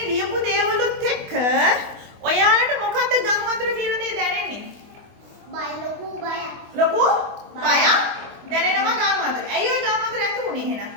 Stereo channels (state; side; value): late; left; 24 ms